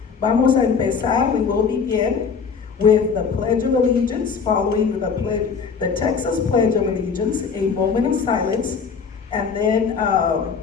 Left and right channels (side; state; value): right; quieter; 5.8 dB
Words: Vamos a empezar, we will begin with the Pledge of Allegiance, following the Texas Pledge of Allegiance, a moment of silence, and then